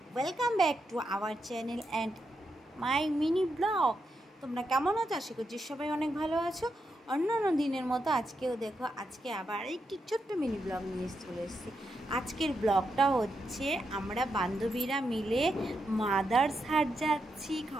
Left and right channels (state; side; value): normal; both; correlation 0.84